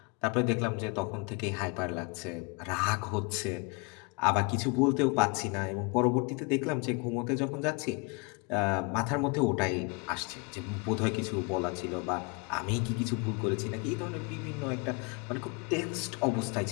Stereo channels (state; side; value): quieter; right; 31.5 dB